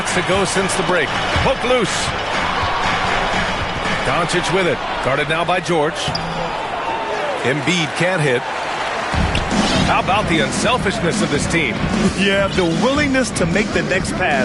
to go since the break. Poke loose. Doncic with it. Guarded now by George. Embiid can't hit. How about the unselfishness of this team? Yeah, the willingness to make the next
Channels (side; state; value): both; identical; correlation 1.00